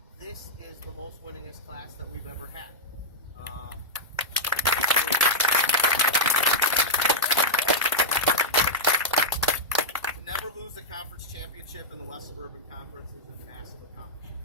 this is the most winningest class that we've ever had. To never lose the conference championship in the West Suburban Conference is a massive accomplishment.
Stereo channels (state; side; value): normal; both; correlation -0.06